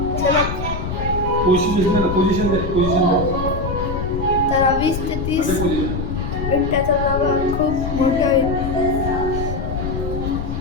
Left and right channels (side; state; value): left; noise; rumble, 4 dB below the sound